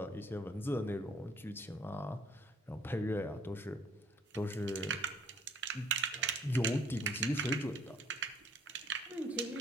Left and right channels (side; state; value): both; normal; correlation 0.61